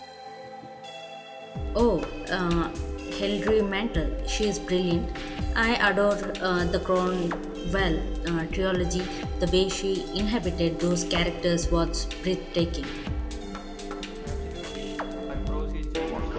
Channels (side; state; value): both; identical; correlation 1.00